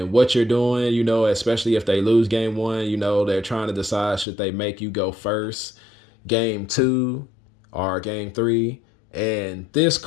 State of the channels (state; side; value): drops out; right; at 4.2 s